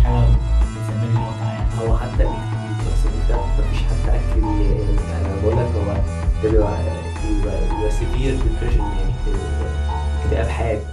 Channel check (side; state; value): both; identical; correlation 1.00